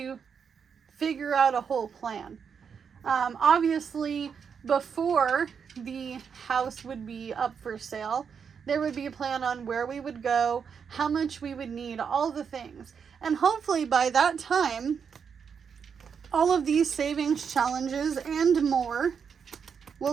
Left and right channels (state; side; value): quieter; left; 6.7 dB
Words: figure out a whole plan. Obviously, before the house would be up for sale, There would be a plan on where we would go, how much we would need, all the things. And hopefully by that time, all of these savings challenges and more